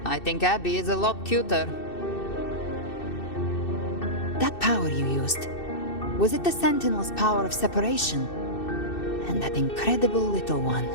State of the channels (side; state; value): right; late; 2.6 ms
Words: I think Abby is a lot cuter. That power you used, was it the Sentinel's power of separation? And that incredible little one.